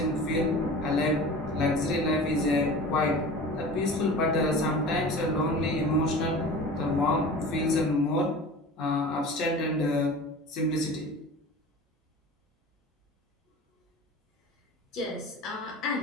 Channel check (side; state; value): both; normal; correlation 0.37